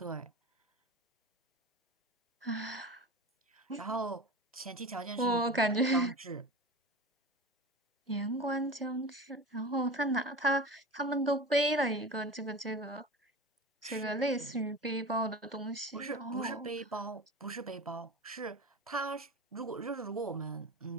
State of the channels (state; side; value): normal; both; correlation 0.31